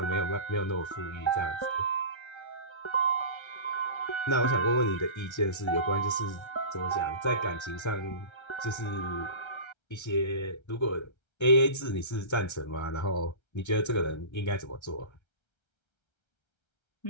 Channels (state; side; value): late; right; 1.3 ms